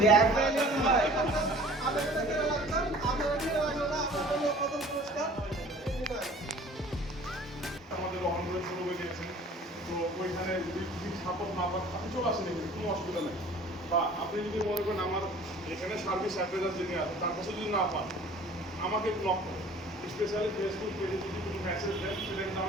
এক ভাই আপনাদের কেন লাগতাম আপনাদের কেন লাগলো না আপনাদের জন্য প্রথম পুরস্কার আমাদের অনলাইন শুরু হয়ে গেছে তো ওইখানে যদি সাপোর্ট না পান আপনি চলে আসেন এখানে কোনো অসুবিধা নেই বা আপনি যদি মনে করেন আমার এখানে সার্ভিস অ্যাডভাইজার যিনি আছে তার কাছে যদি না পান আমাকে ব্লক করুন স্পেশালি ফেসবুক পেজে যদি কোনো মেসেজ দেন সেটা কিন্তু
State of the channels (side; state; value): both; normal; correlation 0.48